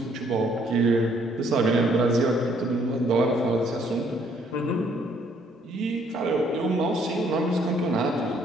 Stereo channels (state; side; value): normal; both; correlation 0.65